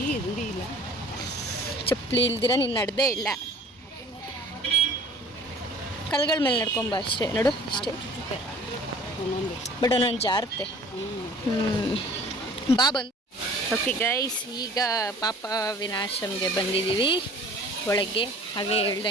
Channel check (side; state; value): both; normal; correlation 0.49